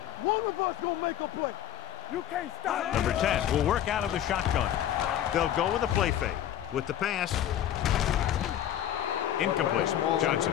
One of us gonna make a play. You can't stop. Number 10 will work out of the shotgun. They'll go with a play fake. With the pass. Incomplete. Johnson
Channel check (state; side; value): quieter; right; 11.3 dB